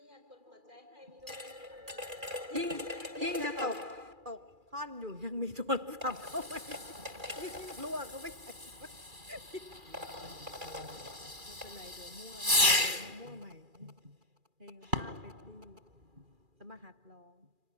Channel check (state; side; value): late; left; 2.4 ms